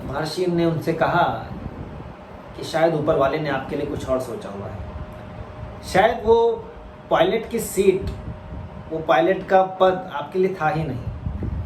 महर्षि ने उनसे कहा कि शायद ऊपर वाले ने आपके लिए कुछ और सोचा हुआ है। शायद वो पायलट की सीट, वो पायलट का पद आपके लिए था ही नहीं।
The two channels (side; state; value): both; identical; correlation 1.00